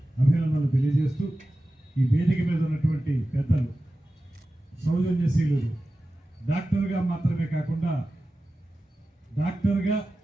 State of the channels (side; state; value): both; normal; correlation 0.94